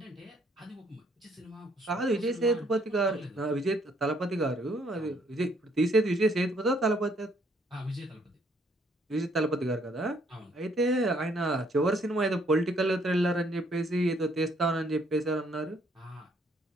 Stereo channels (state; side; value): normal; both; correlation 0.66